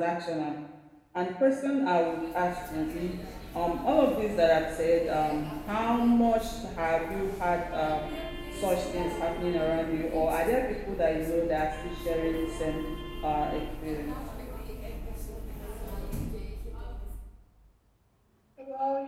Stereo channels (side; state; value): both; identical; correlation 1.00